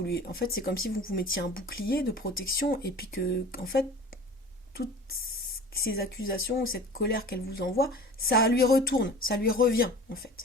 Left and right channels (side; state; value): both; normal; correlation 0.40